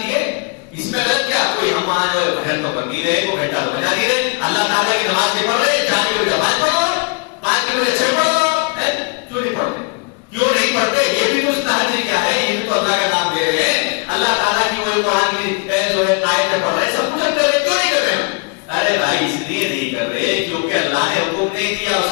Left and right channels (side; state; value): right; quieter; 31.5 dB